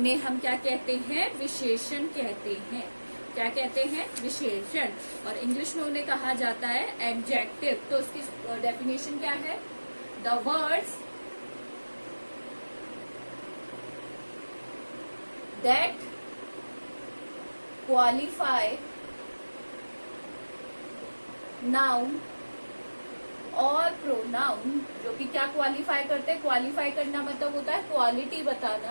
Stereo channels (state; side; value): inverted; both; correlation -1.00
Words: हम क्या कहते हैं? विशेषण कहते हैं। क्या कहते हैं? विशेषण। और इंग्लिश में उन्हें कहा जाता है एडजेक्टिव। तो उसकी डेफिनेशन क्या है? The words that qualify noun और प्रोनाउन, जो कि क्या क्वालिफाई करते हैं? क्वालिफाई करना मतलब होता है क्वालिटी